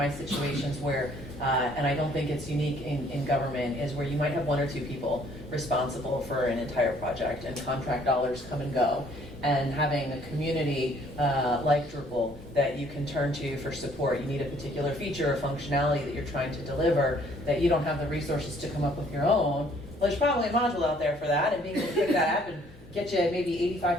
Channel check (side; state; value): both; normal; correlation 0.61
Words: situations where, and I don't think it's unique in government, is where you might have one or two people responsible for an entire project and contract dollars come and go. And having a community like Drupal that you can turn to for support. You need a particular feature or functionality that you're trying to deliver that you don't have the resources to come up with your own. Well, there's probably a module out there for that, and being able to pick that up and get you maybe